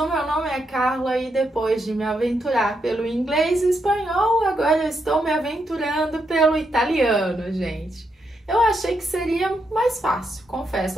meu nome é Carla e depois de me aventurar pelo inglês e espanhol, agora eu estou me aventurando pelo italiano, gente. Eu achei que seria mais fácil, confesso.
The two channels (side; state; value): both; normal; correlation 0.81